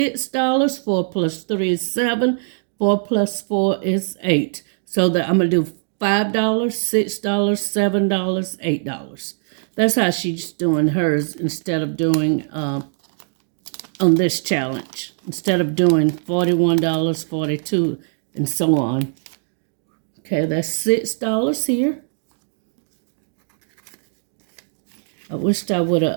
4 plus 3 is 7. 4 plus 4 is 8. So that I'm going to do $5, $6, $7, $8. That's how she's doing hers instead of doing on this challenge, instead of doing $41, 42, and so on. Okay, that's $6 here. I wished I would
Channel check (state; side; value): silent; left; digital silence